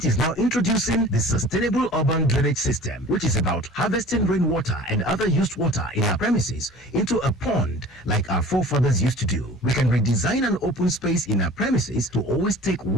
is now introducing the Sustainable Urban Drainage System, which is about harvesting rainwater and other used water in our premises into a pond like our forefathers used to do. We can redesign an open space in our premises to always take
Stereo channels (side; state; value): both; normal; correlation 0.44